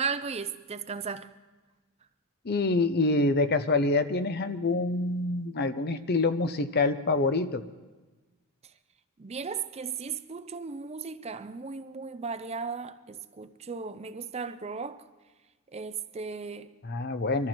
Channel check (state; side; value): normal; both; correlation 0.09